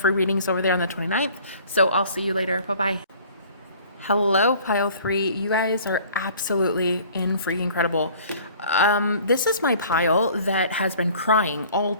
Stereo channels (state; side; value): inverted; both; correlation -0.51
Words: readings over there on the 29th. So I'll see you later. Bye-bye. Hello, pile 3. You guys are absolutely freaking incredible. This is my pile that has been crying all